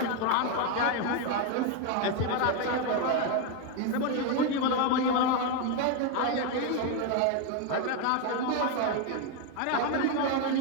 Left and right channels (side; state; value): both; different; correlation 0.01